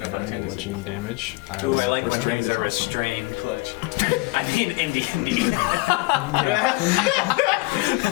want to Bludgeoning damage. Ooh, will I like put when it- things are restrained. Clutch. I mean, in D&D.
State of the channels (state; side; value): quieter; right; 23.8 dB